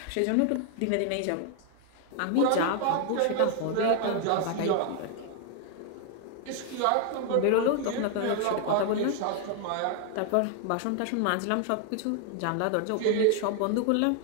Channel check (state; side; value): different; both; correlation 0.00